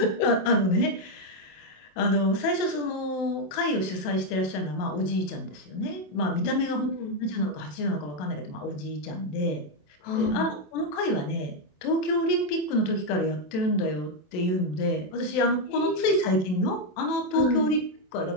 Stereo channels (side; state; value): right; late; 27 ms